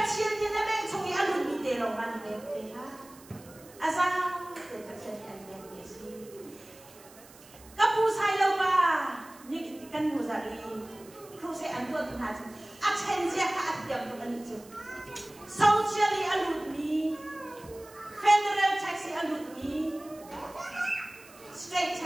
ni na beng chungi alun ni de long an betu ha asa te pasien an betu si kapu sai lo ba ni kan mu zari kru se an tu ha chu a chen sia ka at diam tu an chu socially alun ni federal taxi alun ni state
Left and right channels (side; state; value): right; noise; hiss, 22 dB below the sound